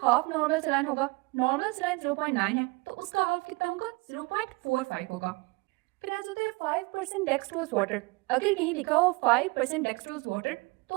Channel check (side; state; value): left; quieter; 26.2 dB